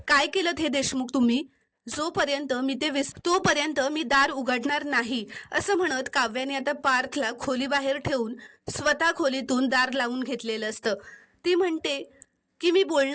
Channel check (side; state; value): both; identical; correlation 1.00